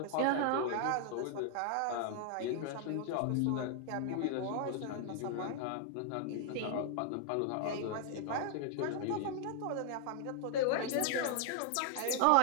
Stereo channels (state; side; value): different; both; correlation 0.00